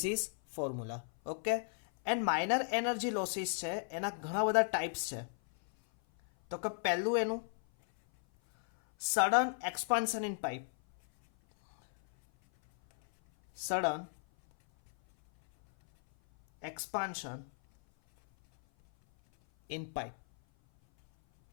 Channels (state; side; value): silent; right; 54 dB below the other